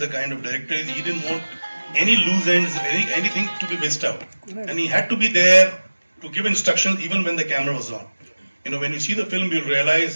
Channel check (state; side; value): inverted; both; correlation -1.00